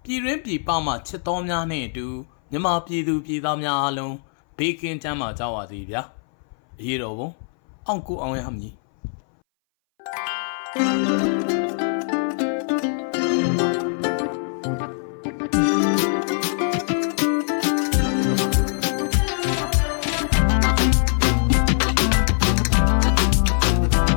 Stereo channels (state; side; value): silent; right; 61 dB below the other